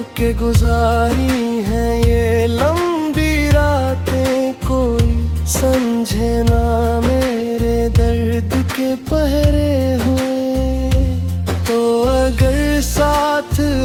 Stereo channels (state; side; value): identical; both; correlation 1.00